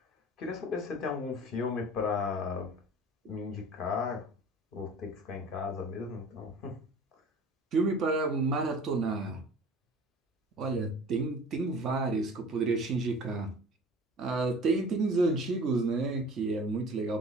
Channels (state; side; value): normal; both; correlation 0.43